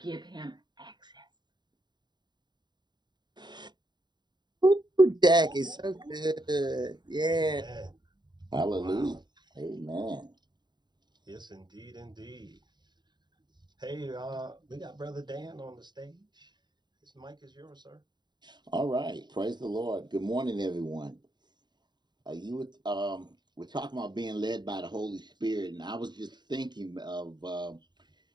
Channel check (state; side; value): late; left; 0.21 ms